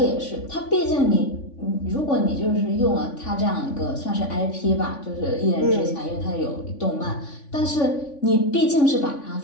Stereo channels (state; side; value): late; right; 3.5 ms